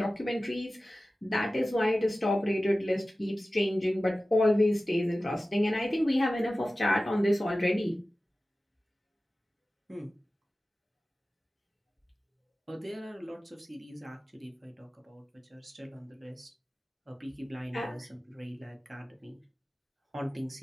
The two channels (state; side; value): normal; both; correlation 0.96